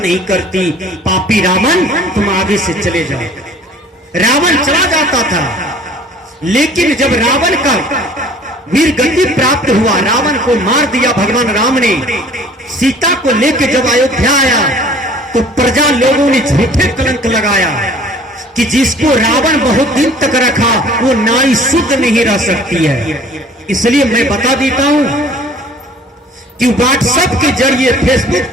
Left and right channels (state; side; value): normal; both; correlation 0.51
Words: नहीं करती। पापी रावण, तुम आगे से चले जाओ। रावण चला जाता था, लेकिन जब रावण का वीर गति प्राप्त हुआ, रावण को मार दिया भगवान राम ने, सीता को लेकर जब अयोध्या आया तो प्रजा लोगों ने झूठे कलंक लगाया कि जिसको रावण बहुत दिन तक रखा वो नारी शुद्ध नहीं रह सकती है। इसलिए मैं बता देता हूं कि व्हाट्सएप के जरिए, फेसबुक